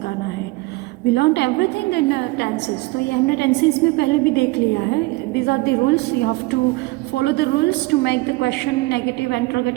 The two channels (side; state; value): left; quieter; 22.0 dB